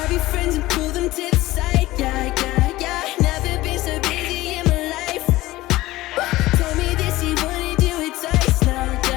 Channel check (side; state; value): right; quieter; 17.7 dB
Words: your friends and pull them to the side, yeah, yeah, yeah. Never been so busy in my life. Told me that she wanna do it twice now,